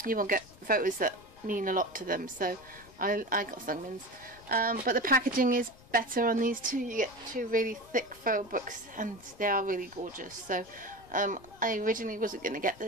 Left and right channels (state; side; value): noise; left; rumble, 23 dB below the sound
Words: you will get photos that mean a lot to them. So I got Sungmin's. But the packaging is better on these 2. You get 2 really thick photo books, and they are really gorgeous. So I originally wasn't going to get